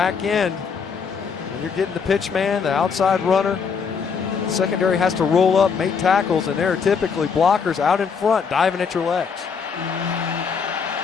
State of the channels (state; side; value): quieter; right; 6.0 dB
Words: end, when you're getting the pitch man, the outside runner, the secondary has to roll up, make tackles, and there are typically blockers out in front diving at your legs.